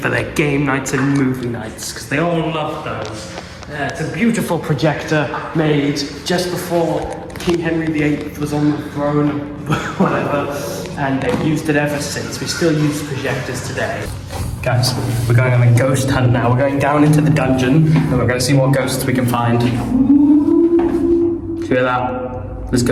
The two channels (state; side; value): identical; both; correlation 1.00